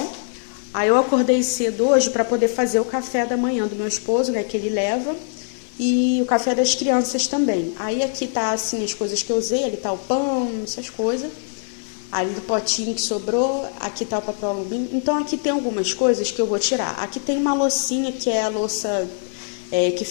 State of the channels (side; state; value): right; silent; 56 dB below the other